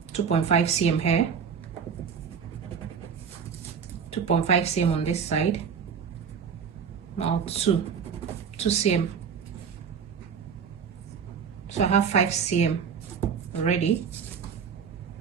2.5 cm here, 2.5 cm on this side, now 2 cm. So I have 5 cm already.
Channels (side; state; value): left; quieter; 6.8 dB